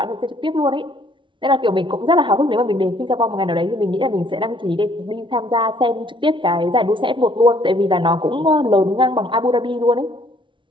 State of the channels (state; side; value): late; left; 0.24 ms